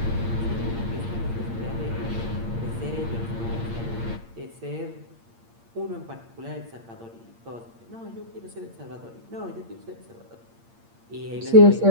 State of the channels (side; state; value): left; late; 8.7 ms